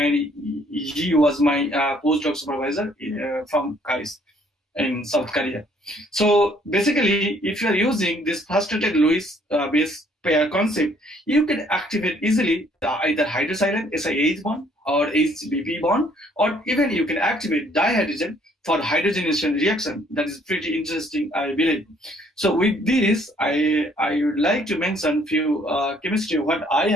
he was my postdoc supervisor from KAIST in South Korea. So basically, if you are using this frustrated Lewis base pair concept, you can activate easily either hydrosilane SiH bond or HBP bond, or even you can activate dihydrogen for hydrogenation reaction. That is pretty interesting, I believe. So with this, I would like to mention few chemistry what I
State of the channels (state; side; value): normal; both; correlation 0.63